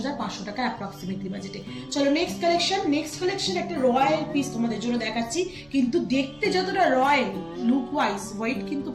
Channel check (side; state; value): right; noise; hum, 28 dB below the sound